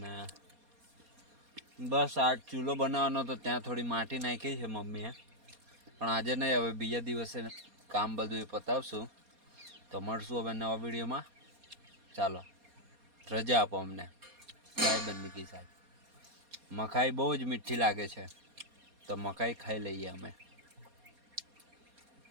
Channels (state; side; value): late; left; 4.2 ms